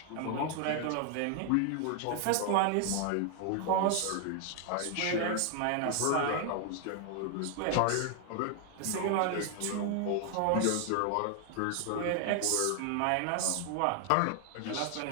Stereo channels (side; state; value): both; different; correlation 0.00